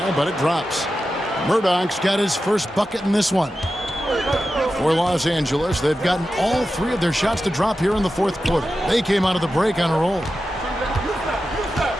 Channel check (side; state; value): both; normal; correlation 0.92